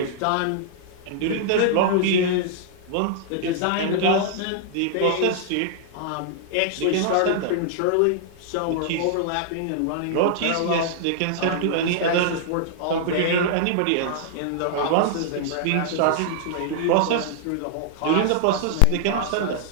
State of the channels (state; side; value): different; both; correlation -0.01